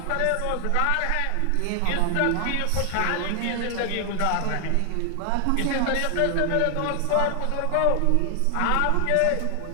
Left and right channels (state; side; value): different; both; correlation 0.00